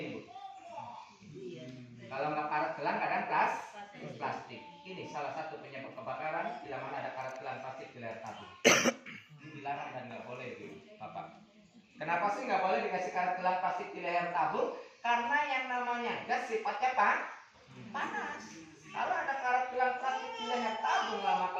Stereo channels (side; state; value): both; identical; correlation 1.00